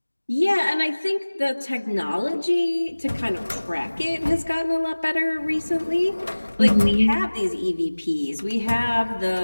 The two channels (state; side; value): inverted; both; correlation -1.00